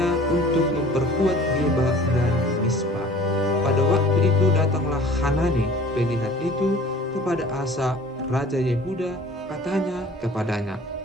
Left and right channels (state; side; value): normal; both; correlation 0.47